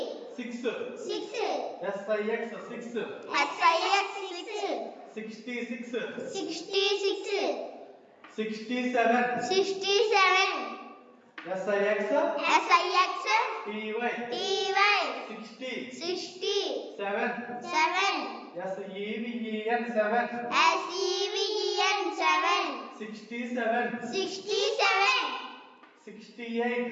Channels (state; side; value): identical; both; correlation 1.00